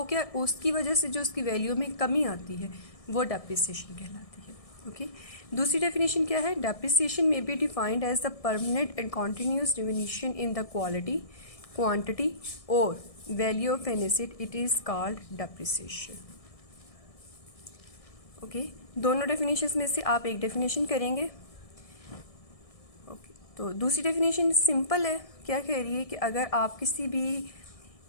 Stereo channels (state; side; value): late; right; 1.6 ms